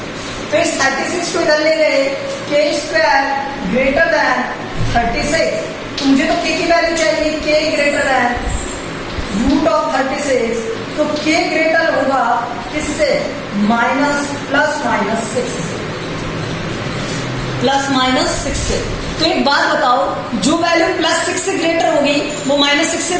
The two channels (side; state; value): both; identical; correlation 1.00